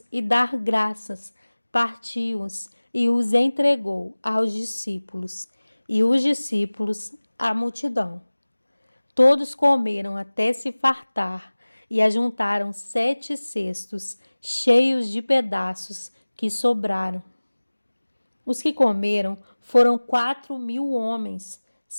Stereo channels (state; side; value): inverted; both; correlation -1.00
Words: e dar graças, partiu-os e os entregou aos discípulos, e os discípulos à multidão. Todos comeram até se fartar e ajuntaram 7 cestos cheios de pedaços que sobraram. Os que comeram foram 4.000 homens,